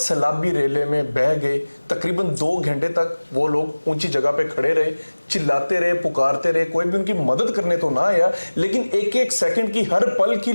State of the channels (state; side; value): inverted; both; correlation -1.00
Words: रेले में बह गए। तकरीबन 2 घंटे तक वो लोग ऊंची जगह पे खड़े रहे, चिल्लाते रहे, पुकारते रहे, कोई भी उनकी मदद करने तो ना आया, लेकिन एक एक सेकंड की, हर पल की